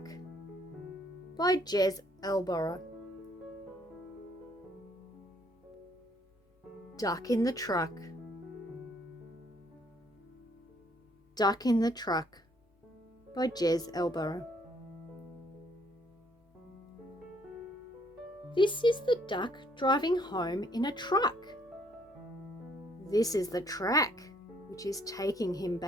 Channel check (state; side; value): normal; both; correlation 0.66